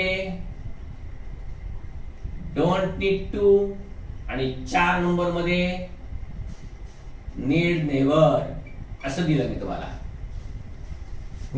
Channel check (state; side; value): identical; both; correlation 1.00